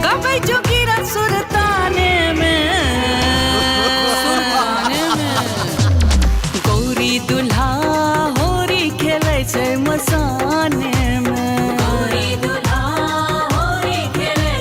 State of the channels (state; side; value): identical; both; correlation 1.00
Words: गावे जोगिरा सुरतान में। गौरी दुल्हा होरी खेले छे मसाने में, गौरी दुल्हा होरी खेले